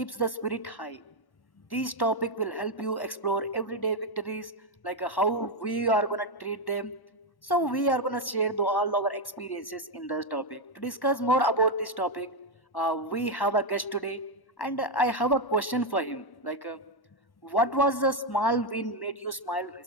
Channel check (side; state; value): right; late; 1.1 ms